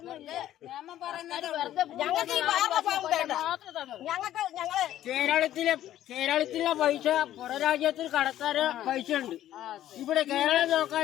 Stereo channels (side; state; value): right; quieter; 12.6 dB